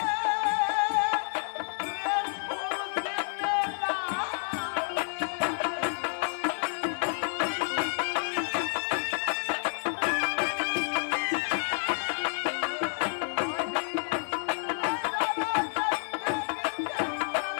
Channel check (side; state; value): right; silent; digital silence